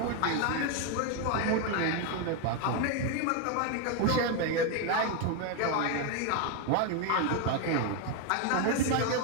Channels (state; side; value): different; both; correlation 0.02